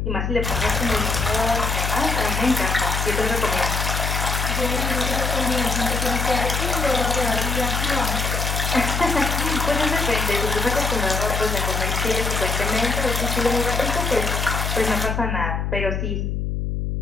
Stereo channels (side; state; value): left; noise; hum, 1 dB below the sound